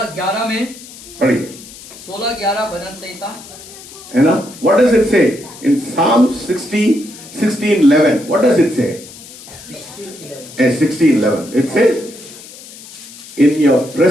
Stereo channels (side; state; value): left; noise; hiss, 17 dB below the sound